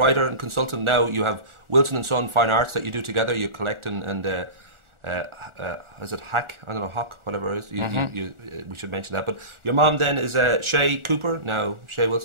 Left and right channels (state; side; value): late; left; 1.4 ms